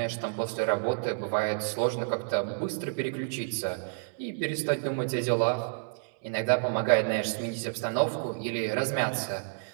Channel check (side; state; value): left; silent; digital silence